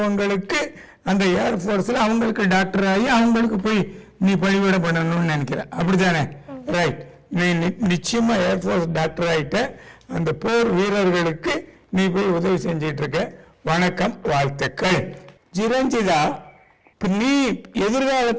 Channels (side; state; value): both; identical; correlation 1.00